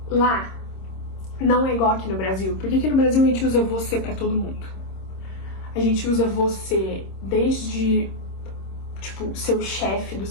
lá não é igual aqui no Brasil, porque aqui no Brasil a gente usa você pra todo mundo. A gente usa você desde, tipo, seu chefe do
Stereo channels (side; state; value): right; late; 26 ms